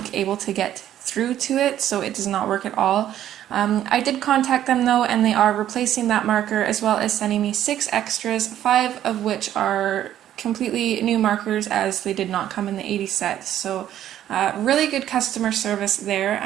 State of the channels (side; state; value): left; quieter; 11.6 dB